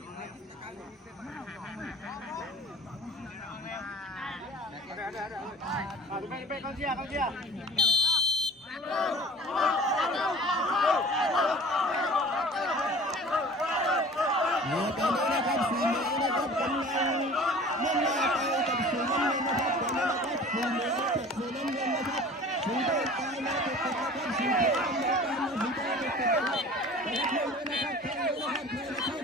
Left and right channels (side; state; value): both; normal; correlation 0.44